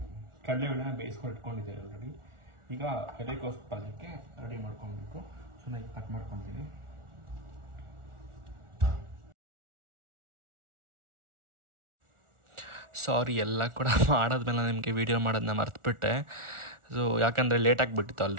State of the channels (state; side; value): late; left; 1.4 ms